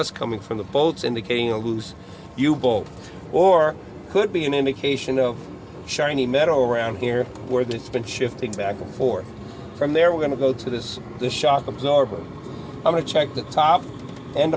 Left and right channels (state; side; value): identical; both; correlation 1.00